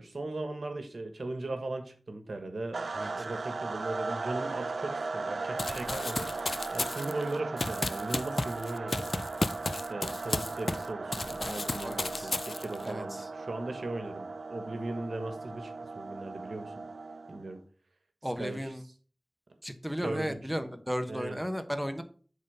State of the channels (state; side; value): normal; both; correlation 0.95